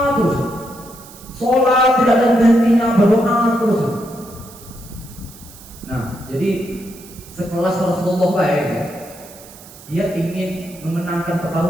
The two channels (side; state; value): right; noise; hiss, 20 dB below the sound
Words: terus, sholat tidak ada hentinya, berdoa terus. Nah, jadi sekelas Rasulullah baik ya, dia ingin memenangkan